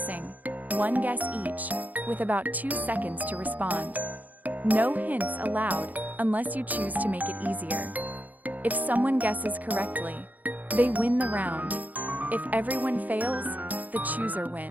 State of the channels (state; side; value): late; left; 0.080 ms